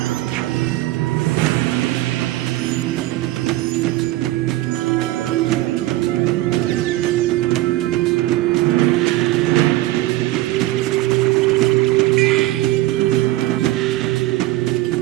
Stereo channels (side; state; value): left; quieter; 16.8 dB